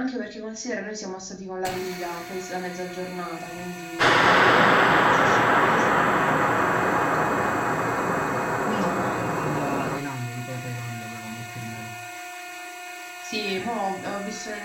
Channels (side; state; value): both; identical; correlation 1.00